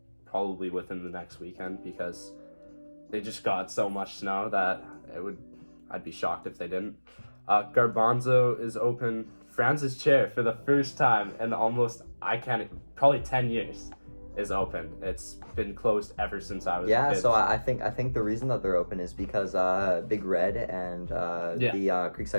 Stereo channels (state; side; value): inverted; both; correlation -1.00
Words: probably within the next weekend because they just got so much snow that I'd be shocked if they didn't. Garbanzo is open. Franz's chair, for the first time in probably 10 years, is open. It's been closed ever since I was a kid. So I think the reason that they're open is because Big Red and the